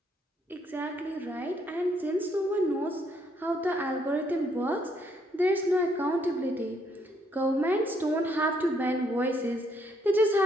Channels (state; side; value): normal; both; correlation 0.71